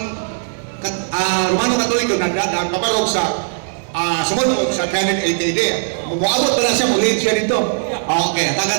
Romano Katoliko na kabarog sa sumunod sa 380 maabot ba na siya muli siya dito? Okay,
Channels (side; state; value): left; silent; digital silence